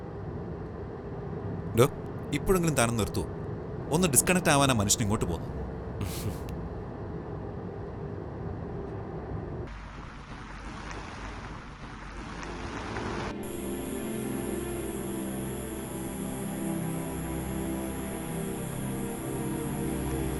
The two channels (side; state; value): both; identical; correlation 1.00